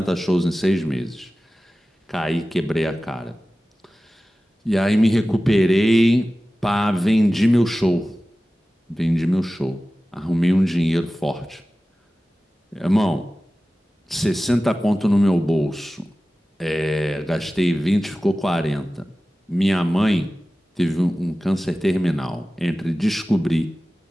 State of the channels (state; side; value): normal; both; correlation 0.96